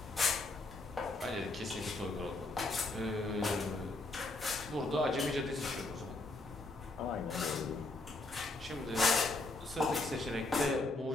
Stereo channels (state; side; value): quieter; right; 3.0 dB